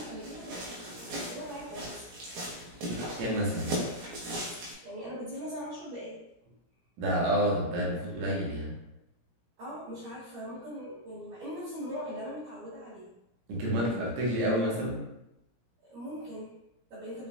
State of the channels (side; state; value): left; late; 17 ms